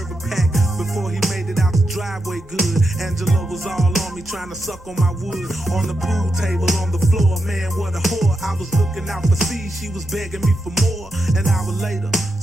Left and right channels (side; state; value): left; noise; rumble, 22 dB below the sound